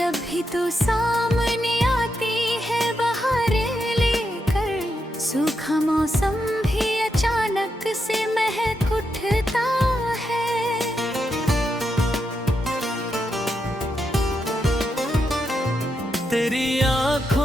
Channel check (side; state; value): both; normal; correlation 0.84